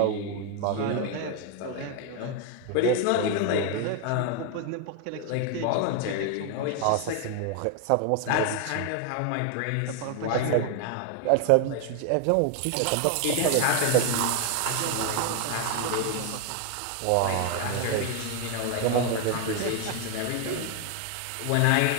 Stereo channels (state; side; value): different; both; correlation 0.00